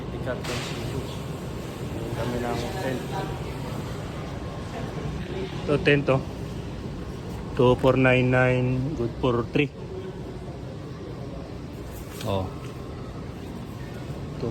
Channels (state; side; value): identical; both; correlation 1.00